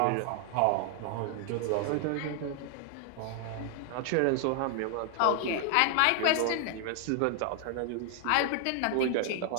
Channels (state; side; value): different; both; correlation 0.00